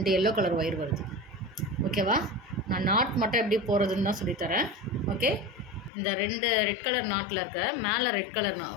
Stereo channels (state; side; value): drops out; right; at 5.9 s